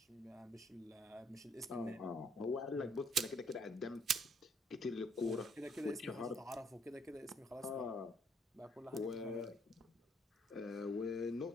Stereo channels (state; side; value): normal; both; correlation 0.68